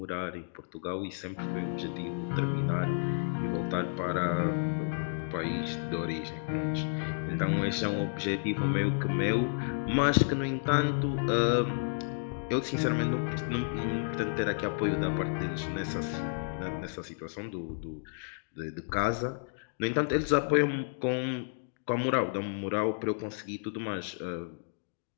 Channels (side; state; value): right; silent; digital silence